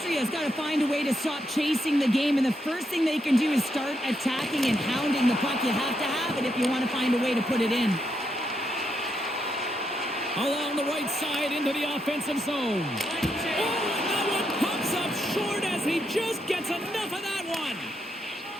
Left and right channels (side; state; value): both; normal; correlation 0.80